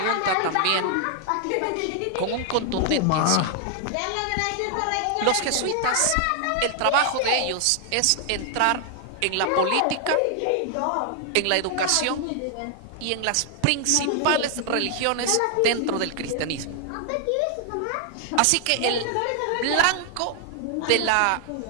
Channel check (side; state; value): both; different; correlation 0.00